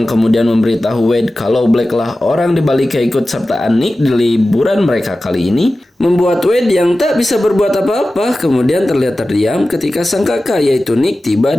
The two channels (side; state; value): both; normal; correlation 0.95